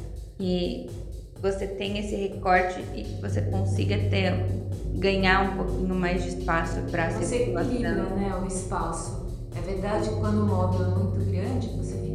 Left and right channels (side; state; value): both; identical; correlation 1.00